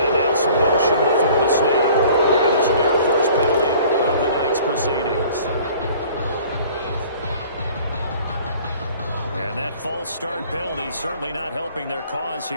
now some motion before the snap. And this will be our first penalty of the night's proceedings. And that false start penalty certainly not helping their cause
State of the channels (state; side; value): inverted; both; correlation -0.50